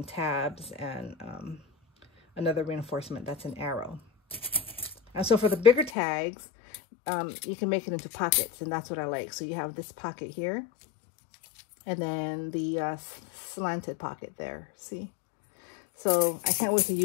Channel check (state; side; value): drops out; right; at 5.9 s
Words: tabs, and another reinforcement that's an arrow. And so for the bigger tags, you can make it into pockets, and that's what I like. So you have this pocket here, and then the slanted pocket there, see? So I can't wait to